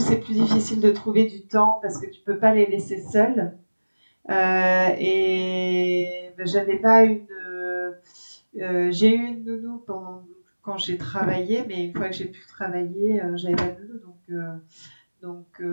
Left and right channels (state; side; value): inverted; both; correlation -1.00